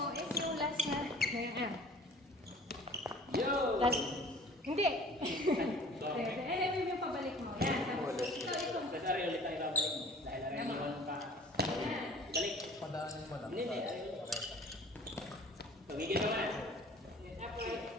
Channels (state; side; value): normal; both; correlation 0.47